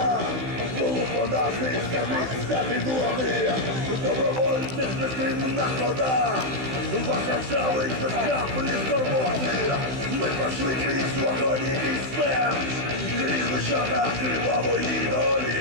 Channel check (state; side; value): late; left; 15 ms